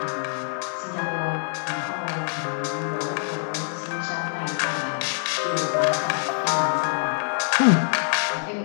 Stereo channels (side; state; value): right; silent; 56 dB below the other